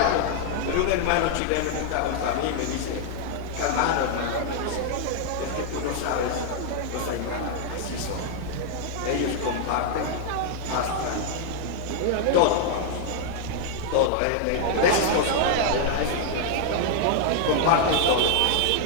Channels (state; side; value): different; both; correlation 0.00